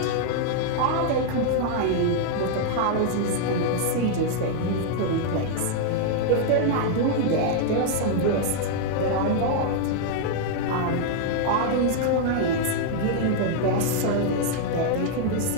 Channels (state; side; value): different; both; correlation -0.01